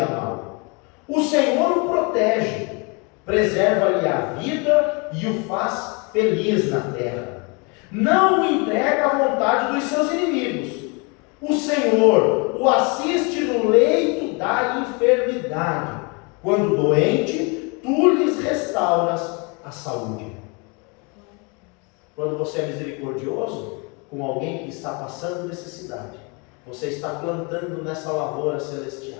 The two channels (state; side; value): quieter; right; 31.3 dB